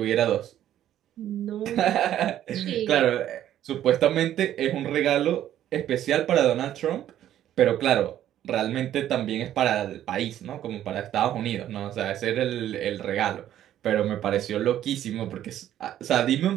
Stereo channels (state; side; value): quieter; left; 11.7 dB